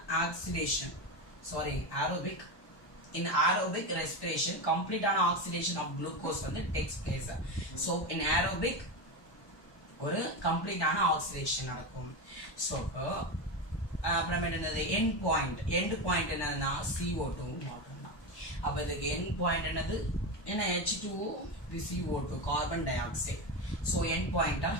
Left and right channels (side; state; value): right; late; 1.2 ms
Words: aerobic in aerobic respiration கம்ப்ளீட்டான ஆக்சிடேஷன் ஆஃப் குளுக்கோஸ் வந்து takes place. So in aerobic ஒரு கம்ப்ளீட்டான ஆக்சிடேஷன் நடக்கும். ஸோ அப்புறம் என்னது எண்ட் பாயிண்ட் என்னதுன்னா CO2 மட்டும்தான். அப்போ இதுக்கு எண்ட் பாயிண்ட் என்னது என்ன H2O இது CO2 carbon dioxide. So end பாயிண்டா